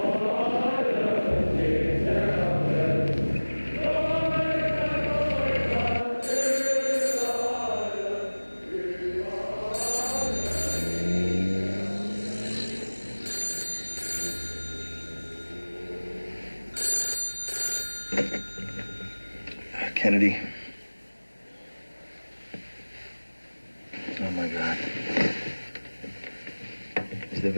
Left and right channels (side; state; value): both; inverted; correlation -1.00